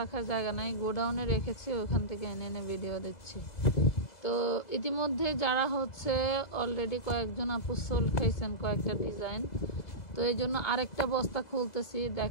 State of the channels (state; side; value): late; right; 2.0 ms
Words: জায়গা নাই, গোডাউনে রেখেছি, ওখান থেকে এনে এনে ভিডিও দিচ্ছি। তো ইতিমধ্যে যারা হচ্ছে অলরেডি কয়েকজন আপু সোল খেয়েছেন কয়েকটা ডিজাইন, তো এই জন্য আরেকটা বস্তা খুলতেছি।